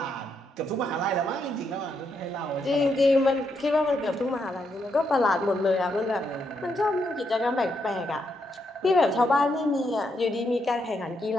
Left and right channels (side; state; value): both; normal; correlation 0.79